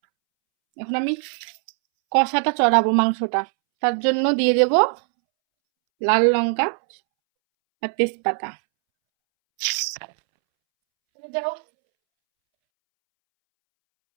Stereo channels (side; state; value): left; silent; 65 dB below the other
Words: এখন আমি কষাটা চড়াবো মাংসটা, তার জন্য দিয়ে দেব লাল লঙ্কা আর তেজপাতা। যাও,